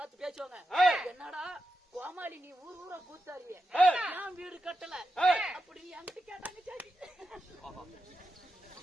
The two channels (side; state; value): both; normal; correlation 0.88